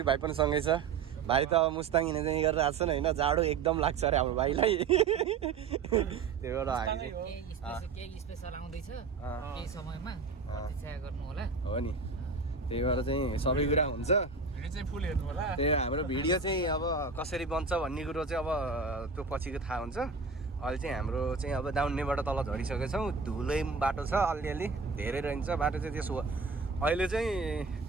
भाइ पनि सँगै छ। भाइ त अब मुस्ताङ हिँड्ने चाहिँ गरेर आएको छ नि होइन। जाडो एकदम लाग्छ अरे हाम्रो भाइलाई। त्यही भएर हामी चाहिँ केही स्पेशल आउँदैछ केही समयमा प्रतीक्षा गर्नु होला। हो नि। त्यही भएर चाहिँ सबै कुरा हुन्छ। भिडियो चाहिँ फुल हेर्नु होला। त्यही हाम्रो भिडियो चाहिँ अब कसरी बन्छ भन्ने कुरो चाहिँ अब त्यो पछिको थाहा हुन्छ। अहिले चाहिँ हाम्रो चाहिँ अब दाउन्नेबाट तल झरिसकेको छौँ। धुलै बाटो छ अलिअलि धेरै रहन्छ बाटो चाहिँ। त्यसो अहिले चाहिँ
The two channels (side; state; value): left; quieter; 4.9 dB